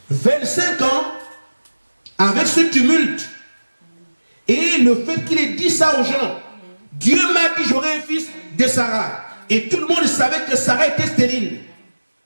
25 ans, avec ce tumulte, et le fait qu'il ait dit ça aux gens, Dieu m'a dit j'aurai un fils de Sarah. Et tout le monde savait que Sarah était stérile.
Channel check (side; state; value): both; inverted; correlation -1.00